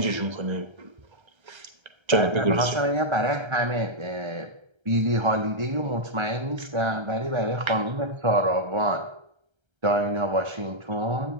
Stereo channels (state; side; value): late; left; 1.3 ms